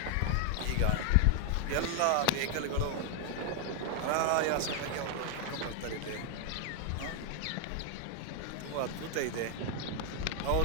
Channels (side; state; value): both; different; correlation 0.00